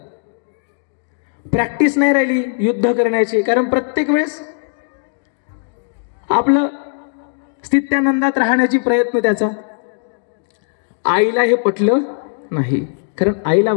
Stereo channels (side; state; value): right; silent; digital silence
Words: प्रॅक्टिस नाही राहिली युद्ध करण्याची, कारण प्रत्येक वेळेस आपलं स्थित्यानंदात राहण्याची प्रयत्न त्याचा. आईला हे पटलं नाही, कारण आईला